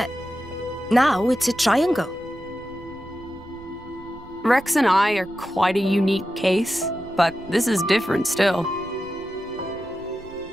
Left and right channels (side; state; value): right; noise; rumble, 23 dB below the sound